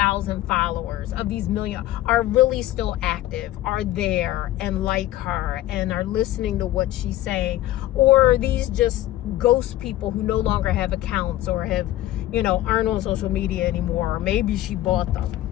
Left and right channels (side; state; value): right; quieter; 14.6 dB